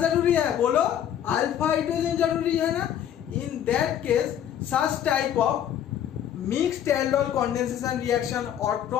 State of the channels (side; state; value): right; quieter; 10.1 dB